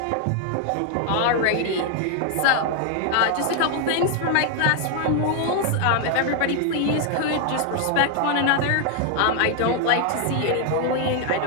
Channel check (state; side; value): different; both; correlation 0.00